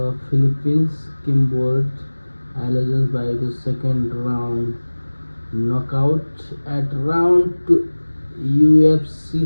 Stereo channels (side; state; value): both; inverted; correlation -1.00